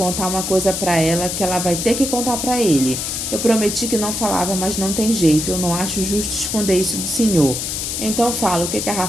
uma coisa pra ela que ela vai ter que contar pra ele. Eu prometi que não falava, mas não tem jeito. Eu não acho justo esconder isso do senhor. Então fala, o que a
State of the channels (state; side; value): noise; left; hiss, 3 dB below the sound